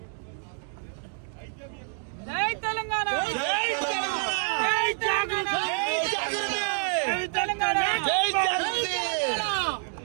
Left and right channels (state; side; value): silent; left; 59 dB below the other